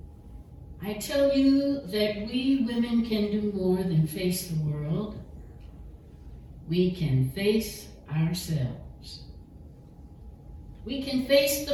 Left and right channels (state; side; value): identical; both; correlation 1.00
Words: I tell you that we women can do more than face the world. We can face ourselves. We can face